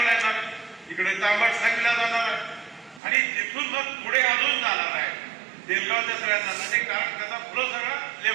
येणार. तिकडे तांबट सांगला जाणार आहे आणि तिथून मग पुढे अजून जाणार आहे देलगावच्या सगळ्या जाणार कारण त्याचा फ्लो सगळा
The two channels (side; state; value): left; drops out; at 3.0 s